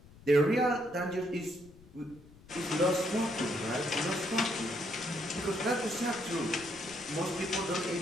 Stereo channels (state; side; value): noise; left; rumble, 23 dB below the sound